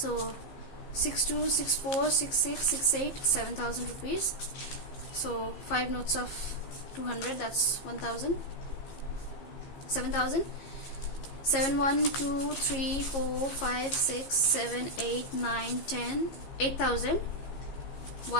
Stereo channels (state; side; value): late; right; 15 ms